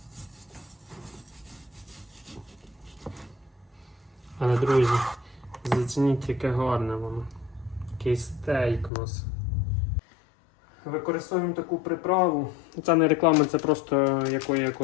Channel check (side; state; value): right; drops out; at 8.9 s